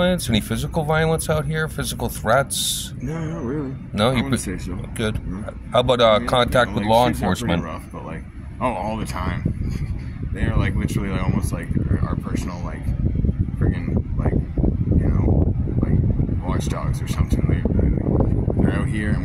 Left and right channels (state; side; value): identical; both; correlation 1.00